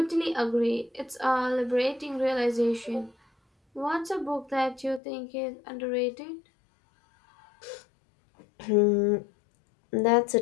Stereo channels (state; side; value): drops out; right; at 5.0 s